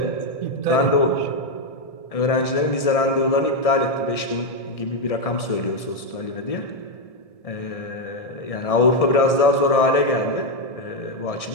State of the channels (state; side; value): late; right; 1.7 ms